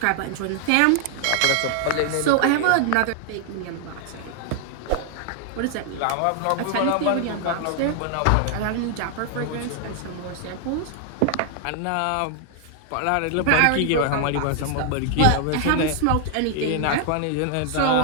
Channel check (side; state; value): both; different; correlation 0.00